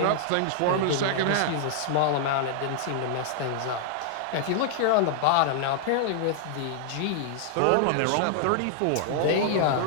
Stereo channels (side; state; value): both; different; correlation -0.01